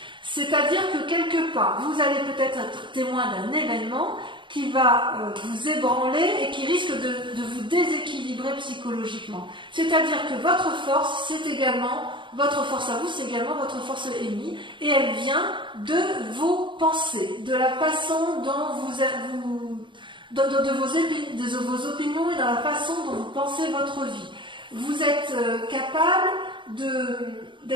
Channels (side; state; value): left; late; 0.23 ms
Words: C'est-à-dire que quelque part, vous allez peut-être être témoin d'un événement qui va vous ébranler et qui risque de vous déséquilibrer psychologiquement. C'est-à-dire que votre force, votre force à vous, c'est également votre force ennemie, et elle vient de vos pensées, de la façon dont de vos opinions et dans la façon dont vous pensez votre vie. Vous êtes capable